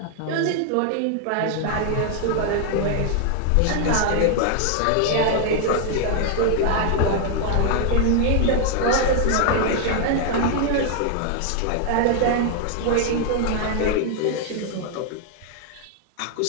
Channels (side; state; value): both; different; correlation 0.00